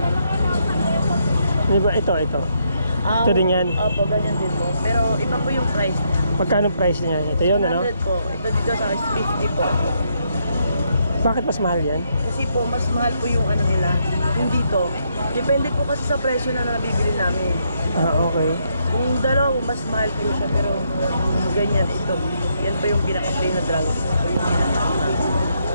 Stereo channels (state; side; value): inverted; both; correlation -0.76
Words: Di ba? Ito. Ito din yan. Opo, ganyan din po. Pero iba po yung price niya. Magkano price niya? Ito yun, ano? 100 po. Ito dito sa 50 po. Bakit mas mahal yan? Kasi po, mas mahal po yung ano nila. Yung dito. Depende po kasi sa presyo na nabibili namin. Okay. Yung dalawa, mas mahal po siya. Pero ganyan, ito. Yan po yung pinaka-plain na dragon. Ito po yung pinaka-plain.